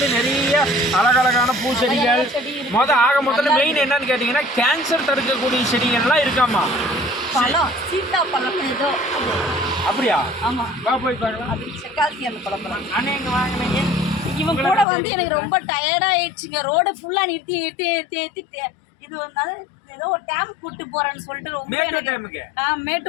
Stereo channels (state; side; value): drops out; right; at 14.9 s